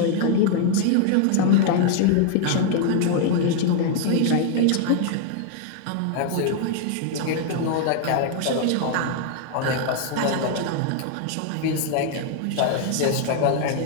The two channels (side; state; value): both; different; correlation 0.00